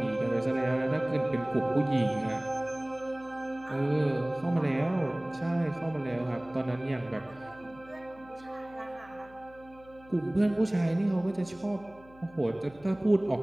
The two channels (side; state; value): left; noise; hum, 24 dB below the sound